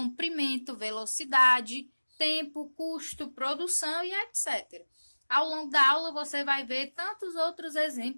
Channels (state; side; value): inverted; both; correlation -1.00